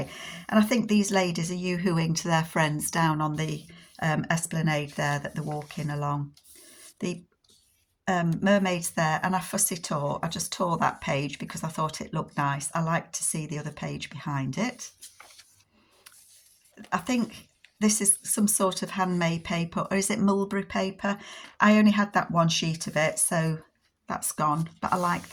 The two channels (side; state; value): both; identical; correlation 1.00